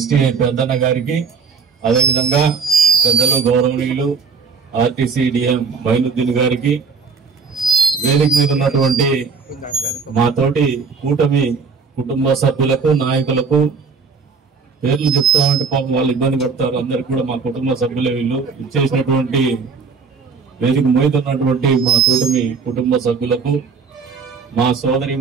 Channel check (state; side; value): quieter; left; 5.2 dB